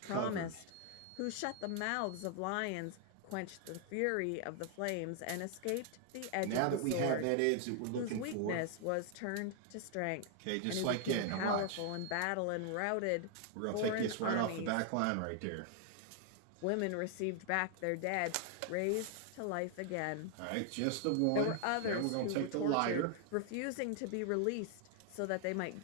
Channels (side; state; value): both; different; correlation 0.00